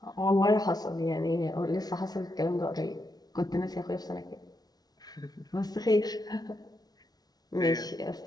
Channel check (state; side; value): late; right; 0.19 ms